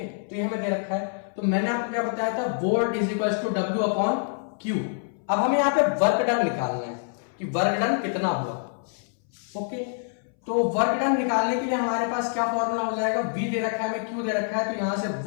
तो ये हमें दे रखा है। तो मैंने आपको क्या बताया था, volt is equal to W upon Q। अब हमें यहाँ पे वर्क डन निकालना है कि वर्क डन कितना हुआ, ओके। तो वर्क डन निकालने के लिए हमारे पास क्या फॉर्मूला हो जाएगा, V दे रखा है, हमें Q दे रखा है, तो यहां से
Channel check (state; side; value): silent; right; 60 dB below the other